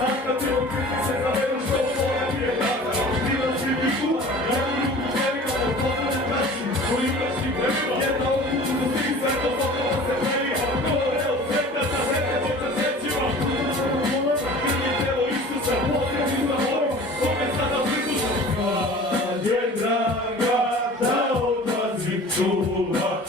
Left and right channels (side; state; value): both; normal; correlation 0.42